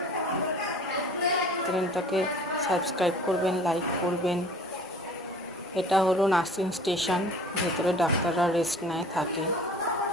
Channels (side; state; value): both; normal; correlation 0.47